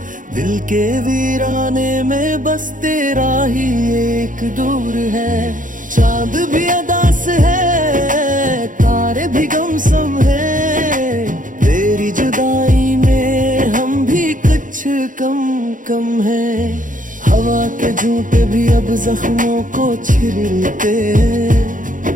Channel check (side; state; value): left; late; 0.38 ms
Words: दिल के वीराने में बस तेरा ही एक दूर है। चांद भी अदास है, तारे भी गमसम है। तेरी जुदाई में हम भी कुछ कम कम है। हवा के झूठे भी अब जख्मों को छिलते हैं।